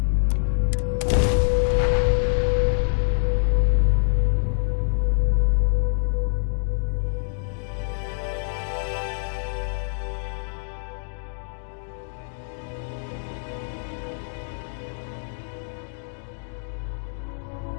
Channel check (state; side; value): silent; right; digital silence